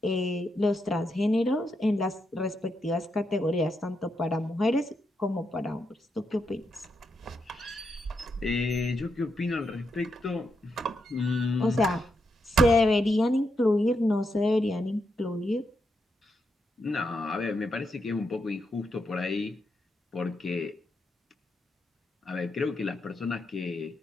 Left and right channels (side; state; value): both; normal; correlation 0.83